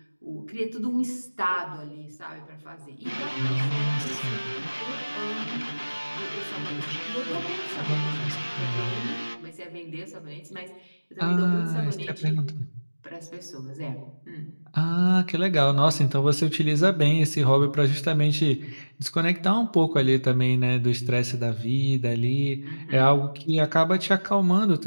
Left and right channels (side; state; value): both; inverted; correlation -1.00